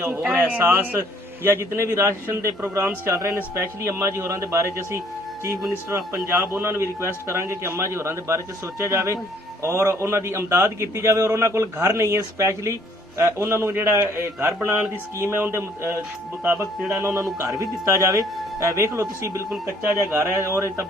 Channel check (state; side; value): normal; both; correlation 0.61